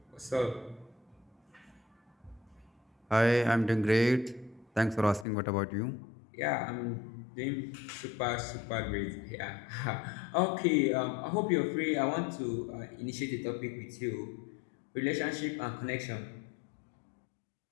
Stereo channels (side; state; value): right; drops out; at 5.2 s